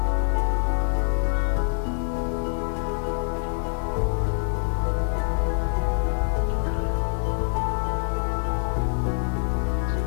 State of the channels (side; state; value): right; silent; 62 dB below the other